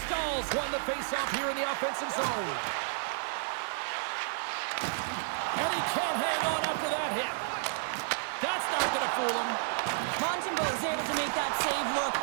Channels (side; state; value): left; silent; digital silence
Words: Stahls won the faceoff here in the offensive zone. And he can't hang on after that hit. That's not going to fool him. Montembeault is able to make that save look